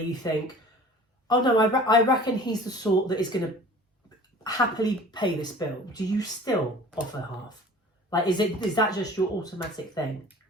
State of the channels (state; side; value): normal; both; correlation 0.45